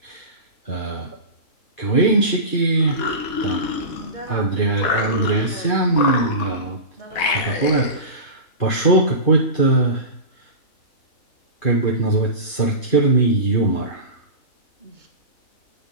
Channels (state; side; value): late; right; 2.4 ms